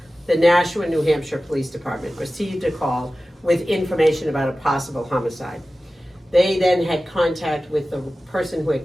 the Nashua, New Hampshire Police Department received a call with information about a possible homicide. They then had contact with the person who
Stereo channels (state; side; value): normal; both; correlation 0.95